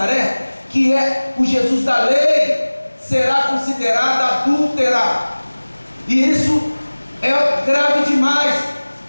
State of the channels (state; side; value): inverted; both; correlation -1.00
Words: que é o Jesus da lei, será considerada adúltera. E isso é grave demais,